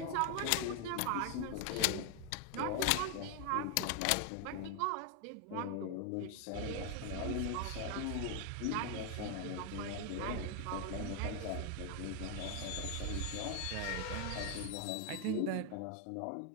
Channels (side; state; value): both; different; correlation 0.01